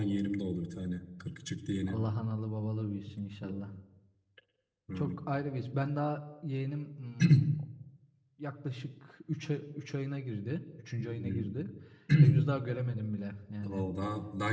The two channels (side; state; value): both; identical; correlation 1.00